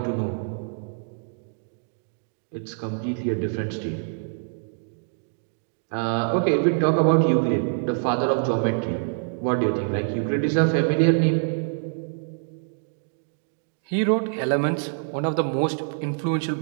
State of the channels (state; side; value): silent; left; digital silence